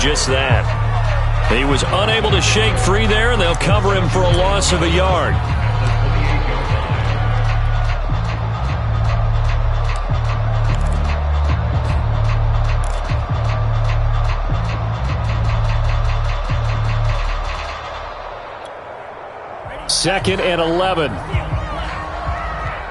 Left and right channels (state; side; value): identical; both; correlation 1.00